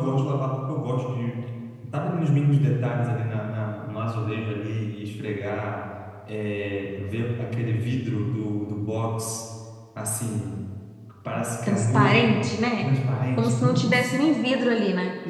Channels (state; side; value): identical; both; correlation 1.00